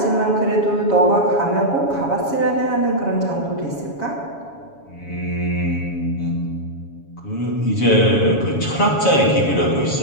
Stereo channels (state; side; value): late; right; 7.2 ms